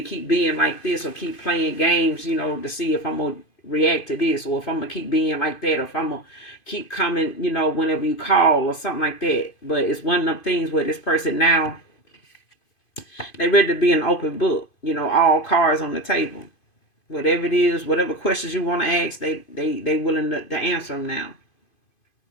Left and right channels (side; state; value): right; late; 2.5 ms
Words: keep being like this, or keep playing games, to see if I'm gonna react to this, or if I'm gonna keep being like that, or if I'm gonna keep coming, whenever you call, or something like that. But it's one of them things where this person now, they ready to be an open book, all cards on the table. Whatever it is, whatever questions you want to ask, they willing to answer them now.